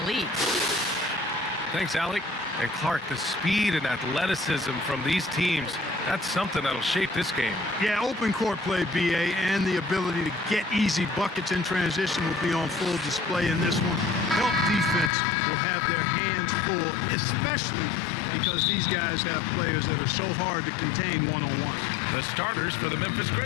league. Thanks, Alec. And Clark, the speed and athleticism from these teams, that's something that'll shape this game. Yeah, open court play, BA, and the ability to get easy buckets in transition will be on full display in this one. Help defense will have their hands full, especially because these guys have players that are so hard to contain one-on-one. The starters for the Memphis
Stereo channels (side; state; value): right; drops out; at 15.1 s